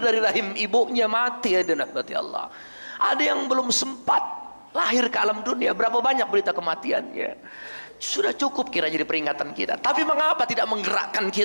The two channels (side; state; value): both; inverted; correlation -1.00